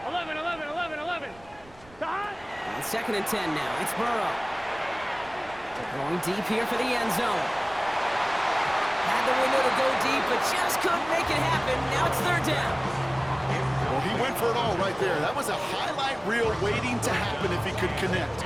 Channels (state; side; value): noise; right; rumble, 24 dB below the sound